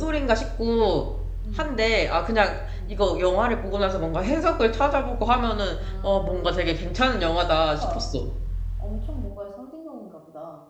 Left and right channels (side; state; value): both; identical; correlation 1.00